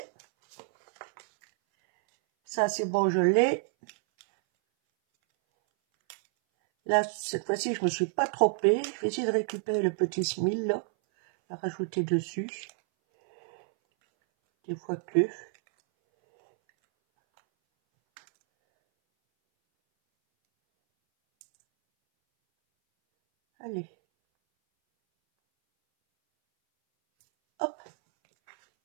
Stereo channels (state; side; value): silent; left; 59 dB below the other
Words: Ça, c'est bon, je l'ai. Là, cette fois-ci, je me suis pas trompée. Je vais essayer de récupérer le petit smile, là. À rajouter dessus. Des fois que. Allez. Hop.